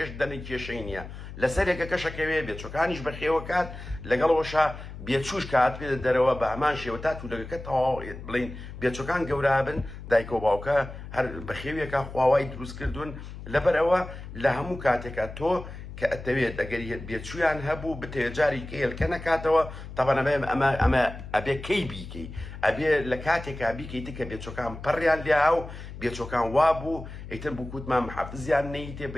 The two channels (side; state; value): left; noise; hum, 12 dB below the sound